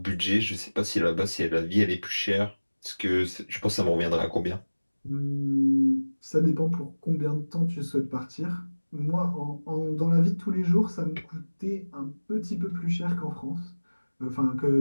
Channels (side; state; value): both; inverted; correlation -1.00